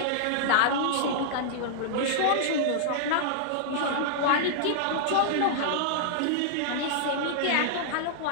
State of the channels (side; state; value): both; different; correlation -0.01